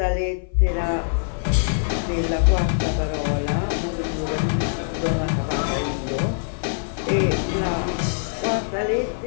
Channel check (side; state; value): right; silent; 58 dB below the other